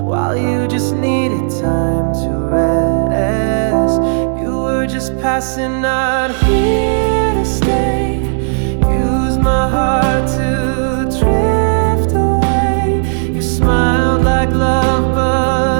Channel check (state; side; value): silent; left; digital silence